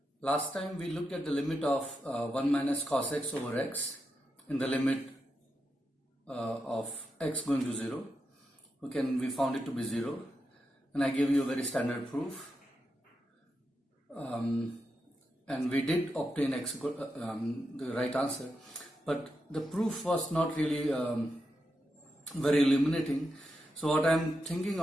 last time we looked at the limit of 1 minus cos x over x in the limit of x going to 0. Okay, and we found it to be 0, and I gave you a very standard proof, and we did obtain x the right answer, but the proof was not really very illuminating. So what I'm thinking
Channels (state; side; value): normal; both; correlation 0.86